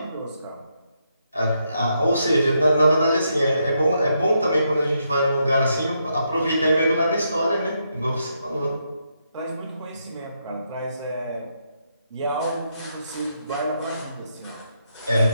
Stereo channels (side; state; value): both; inverted; correlation -0.79